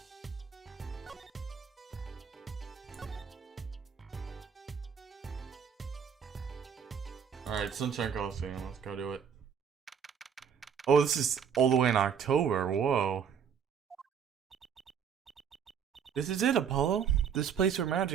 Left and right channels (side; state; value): left; quieter; 7.5 dB